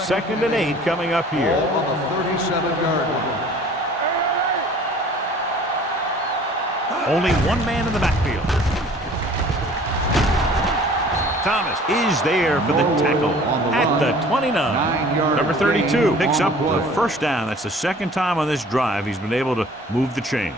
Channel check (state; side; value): normal; both; correlation 0.49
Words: and 8 coming up here. Ball on the 37-yard line. Only one man in the backfield. Thomas is there for the tackle at the 29. Number 32 picks up the first down. That's the second time on this drive he's been able to move the